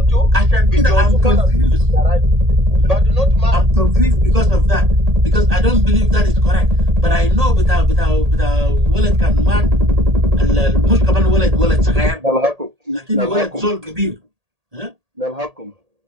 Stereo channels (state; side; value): late; left; 1.8 ms